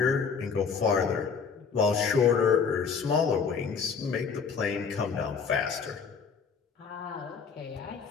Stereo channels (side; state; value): right; quieter; 5.9 dB